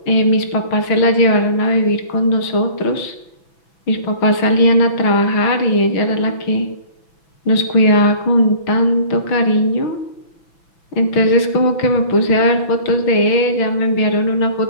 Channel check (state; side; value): late; right; 6.0 ms